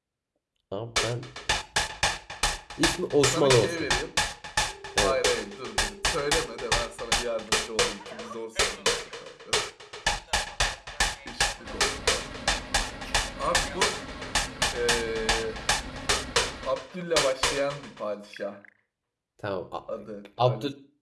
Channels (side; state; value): both; identical; correlation 1.00